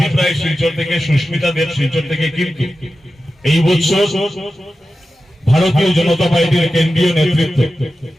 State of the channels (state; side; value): normal; both; correlation 0.93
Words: রায় শিলচর থেকে, সুস্মিতা দেব শিলচর থেকে। কিন্তু এই বছর ভারতীয় জনতা পার্টির কেন্দ্রীয় নেতৃত্ব